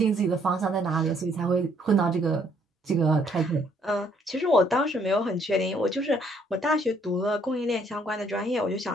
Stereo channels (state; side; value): normal; both; correlation 0.66